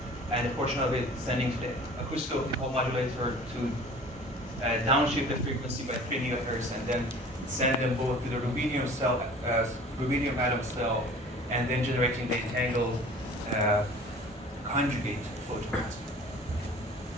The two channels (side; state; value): both; normal; correlation 0.45